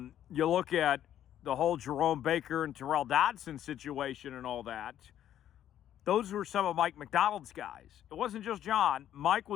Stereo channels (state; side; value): quieter; right; 11.1 dB